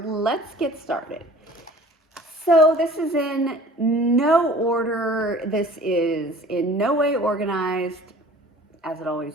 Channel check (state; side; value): normal; both; correlation 0.47